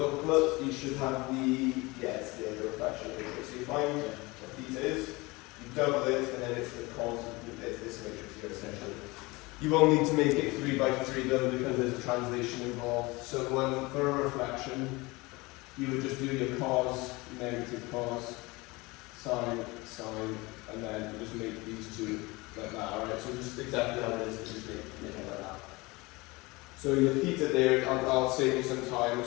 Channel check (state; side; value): quieter; right; 23.5 dB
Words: you should have the, it's the reflection matrix. So you find what theta is, you double it, and then it's the cos of this matrix here essentially. You won't need to make it 3 by 3 though, because there's a translation involved. So for a reflection, you would just do your cos, negative cos, sine, sine, and then you just make these two like that, alright? So just exactly how it is, just make it like that. So your theta there, I'll save you some time.